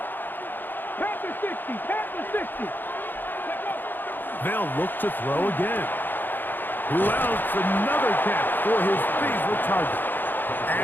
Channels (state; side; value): late; right; 0.092 ms